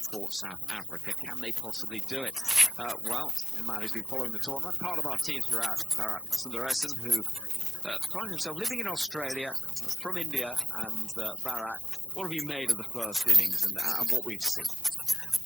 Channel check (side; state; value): both; normal; correlation 0.92